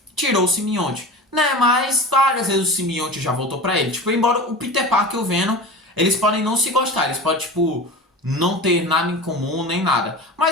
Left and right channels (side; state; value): both; normal; correlation 0.32